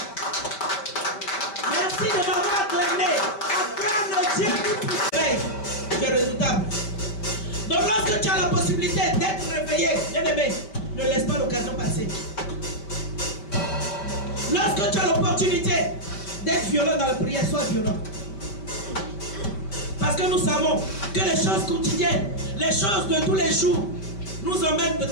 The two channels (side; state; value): right; late; 5.1 ms